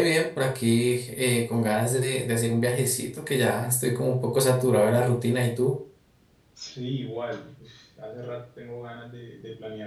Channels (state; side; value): identical; both; correlation 1.00